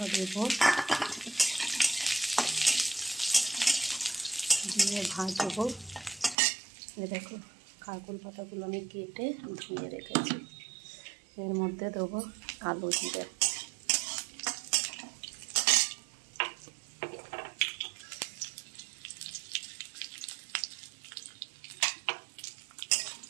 দেব, দিয়ে ভাজবো। দেখো খারকুল পাতাগুলো আমি কেটে ধুয়ে রেখেছি। এর মধ্যে দেবো আলু জিরে,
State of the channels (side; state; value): left; drops out; at 6.4 s